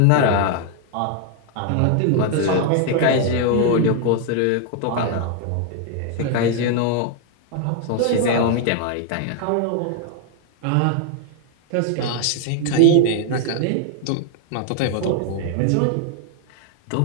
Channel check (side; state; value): both; different; correlation 0.00